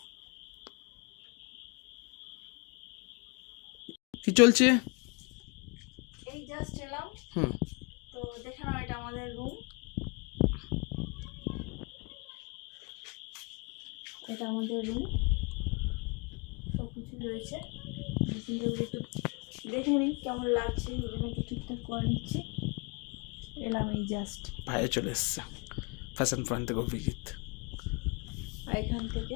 কি চলছে? এই জাস্ট এলাম, হুম, তো দেখে নাও এটা আমাদের রুম। এটা আমাদের রুম, সব কিছু রয়েছে। একটু দেখে নিই কেমন লাগছে, এই জন্য একটু ঠিকঠাক করে নিচ্ছি। এলাম এই জাস্ট, ভাইয়া চলে এসছে ফ্যাশন পয়েন্ট থেকে অভিজিৎ। আর এখান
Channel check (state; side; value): quieter; right; 30.2 dB